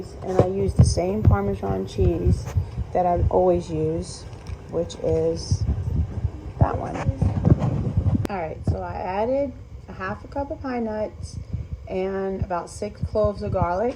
and I use the same Parmesan cheese that I always use, which is that one. Alright, so I added a half a cup of pine nuts and about 6 cloves of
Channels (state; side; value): identical; both; correlation 1.00